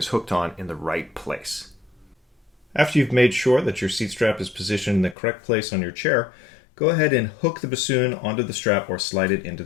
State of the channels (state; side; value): drops out; right; at 5.2 s